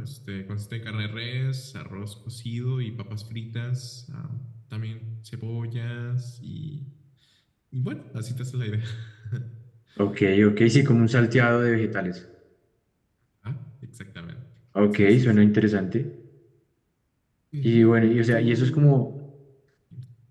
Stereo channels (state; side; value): identical; both; correlation 1.00